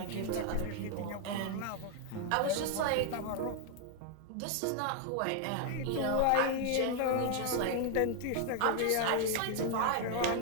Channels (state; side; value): different; both; correlation 0.00